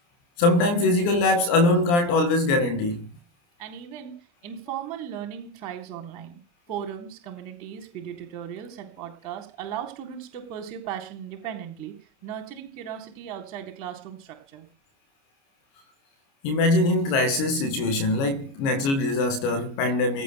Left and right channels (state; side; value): late; right; 29 ms